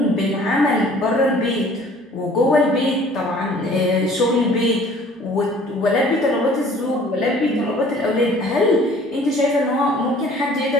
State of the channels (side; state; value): both; normal; correlation 0.52